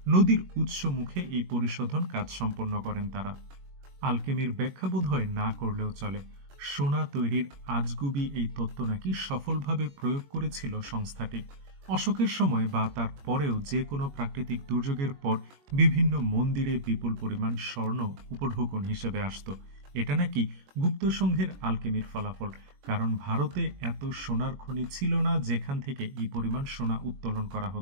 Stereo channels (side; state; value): left; late; 22 ms